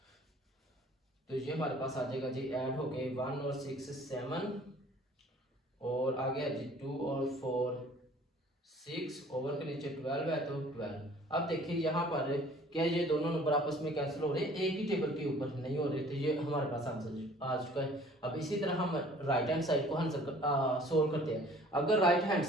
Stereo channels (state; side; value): normal; both; correlation 0.53